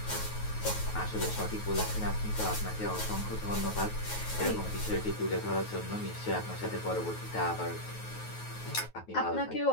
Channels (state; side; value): late; right; 9.3 ms